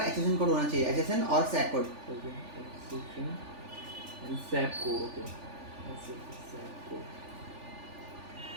HSN कोड होना चाहिए, HSN और SAC कोड।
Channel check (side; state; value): left; late; 3.4 ms